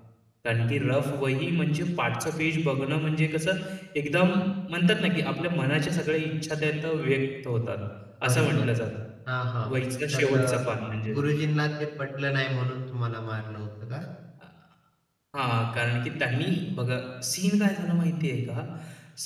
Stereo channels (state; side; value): identical; both; correlation 1.00